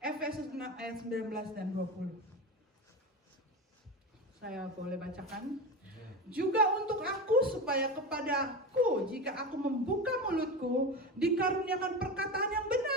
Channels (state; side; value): normal; both; correlation 0.23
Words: 6 ayat 19 dan 20. Saya boleh bacakan. Juga untuk aku, supaya kepadaku, jika aku membuka mulutku, dikaruniakan perkataan yang